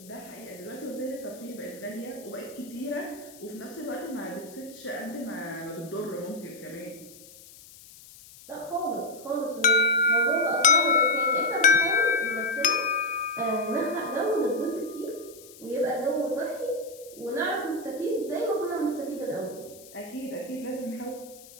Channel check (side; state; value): left; noise; hiss, 20 dB below the sound